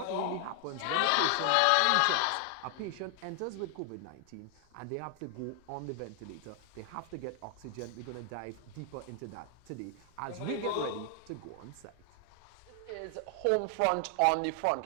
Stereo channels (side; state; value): both; different; correlation 0.00